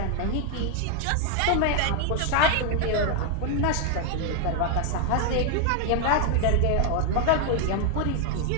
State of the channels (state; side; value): different; both; correlation 0.00